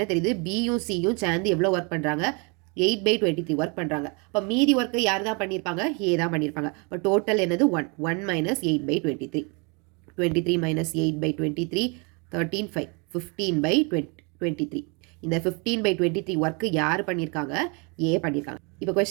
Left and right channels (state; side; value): quieter; left; 32.3 dB